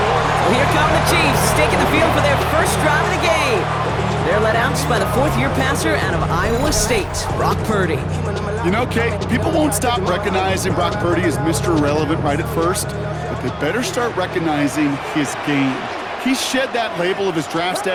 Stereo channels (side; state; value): both; identical; correlation 1.00